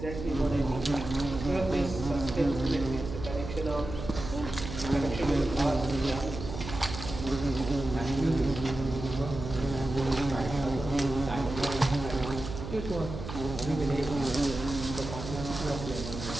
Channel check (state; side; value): noise; right; hum, 8 dB below the sound